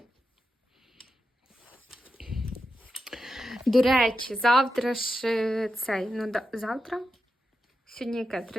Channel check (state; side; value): normal; both; correlation 0.89